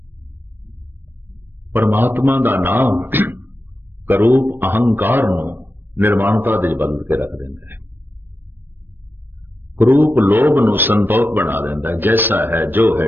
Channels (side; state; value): left; late; 0.095 ms